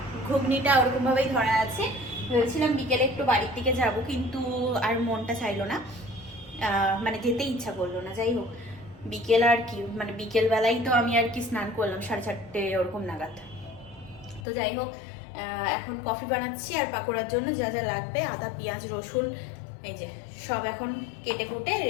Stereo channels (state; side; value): drops out; right; at 14.4 s